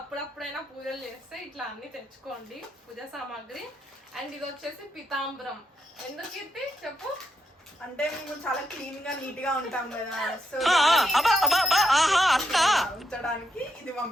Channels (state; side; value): normal; both; correlation 0.81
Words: పూజలు చేస్తే ఇట్లా అన్ని తెచ్చుకోండి పూజా సామాగ్రి. అండ్ ఇది వచ్చేసి పితాంబరం. ఎందుకు కీర్తి చెప్పు? అంటే మేము చాలా క్లీన్ గా నీట్ గా ఉంటాం కదా, సో ఉంచడానికి ఇది